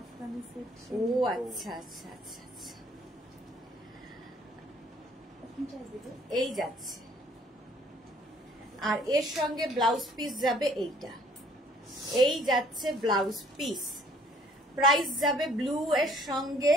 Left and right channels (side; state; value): both; normal; correlation 0.59